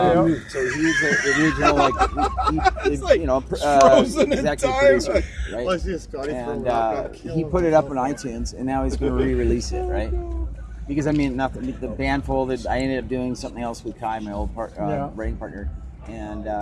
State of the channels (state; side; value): identical; both; correlation 1.00